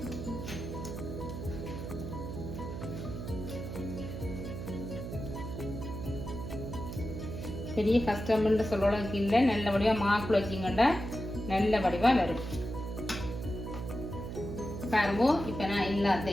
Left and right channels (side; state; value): right; noise; hum, 7 dB below the sound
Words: பெரிய கஷ்டம்னு சொல்றதுக்கு இல்லை. நல்ல வடிவாக மாக்குள்ள வச்சிங்கண்டா நல்ல வடிவாக வரும். பாருங்க இப்போ நான்